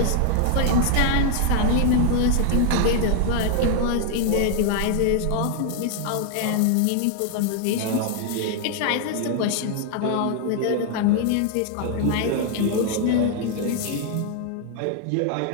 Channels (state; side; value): different; both; correlation 0.00